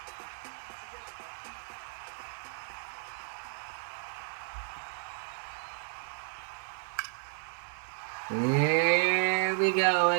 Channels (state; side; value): silent; left; digital silence